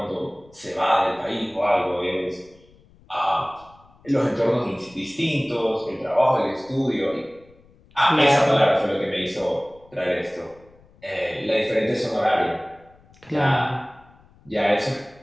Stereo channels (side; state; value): left; noise; rumble, 28 dB below the sound